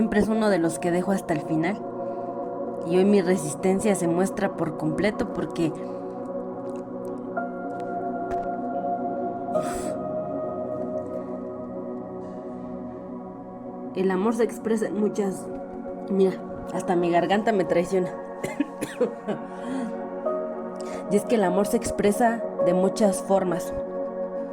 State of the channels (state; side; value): identical; both; correlation 1.00